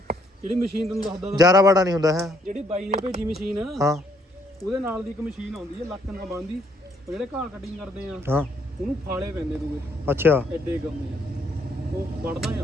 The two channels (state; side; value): normal; both; correlation 0.68